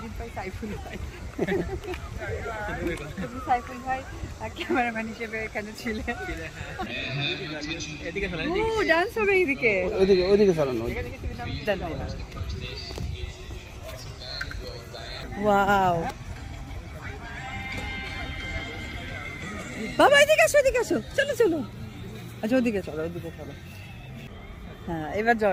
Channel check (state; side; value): identical; both; correlation 1.00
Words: পাই সাইফুল ভাই। তুমি সাইফুল ভাই ক্যামেরাম্যান হিসেবে এখানে ছিলেন। ডান্স হবে এইদিকে, ওইদিকে চালানো। ওয়াও বাবা এদিকে আসো, এদিকে আসো, চলো চলো। আচ্ছা ওদিকে চলো, ওদিকে চলো। হ্যাঁ এবার যাও,